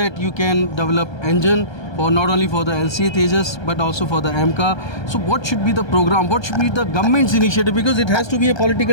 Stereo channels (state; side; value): late; right; 1.3 ms